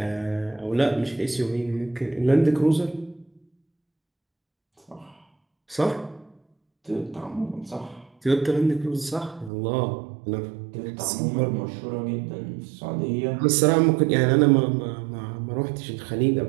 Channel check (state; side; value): drops out; left; at 9.5 s